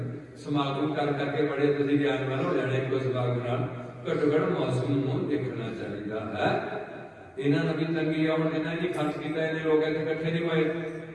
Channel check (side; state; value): both; identical; correlation 1.00